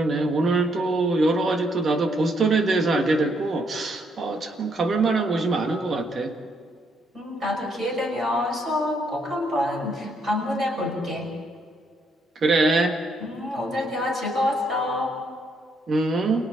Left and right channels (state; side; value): normal; both; correlation 0.73